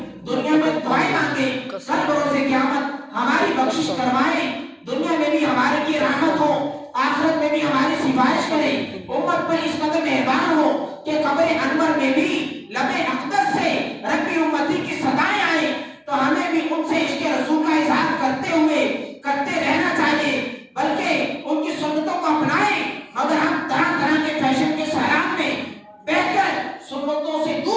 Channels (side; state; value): both; identical; correlation 1.00